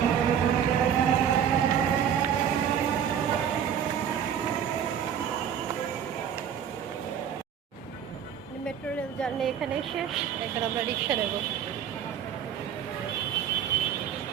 মেট্রো রেল জার্নি এখানেই শেষ। এখন আমরা রিক্সা নেব।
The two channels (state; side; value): quieter; left; 8.7 dB